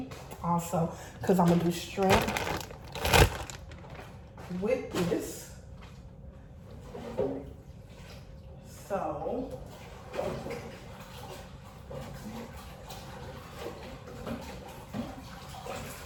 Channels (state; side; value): identical; both; correlation 1.00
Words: also, because I'm gonna do shrimp with this. So